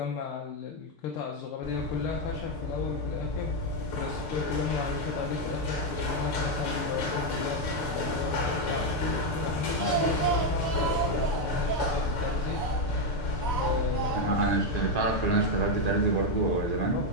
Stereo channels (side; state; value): right; late; 6.7 ms